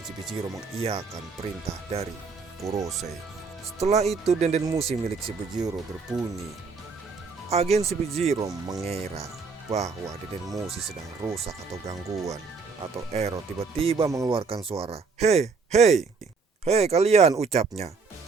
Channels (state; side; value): quieter; left; 4.7 dB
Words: CP0 mengiyakan perintah dari Gorosei. Setelah itu denden musik milik CP0 berbunyi. Agen CP0 mengira bahwa denden musik sedang rusak atau gangguan atau error. Tiba-tiba mengeluarkan suara, "Hei, hei, hei kalian," ucapnya.